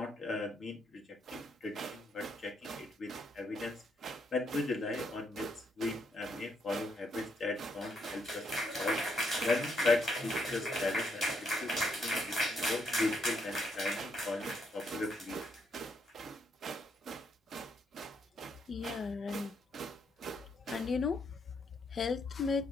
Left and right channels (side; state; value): both; normal; correlation 0.75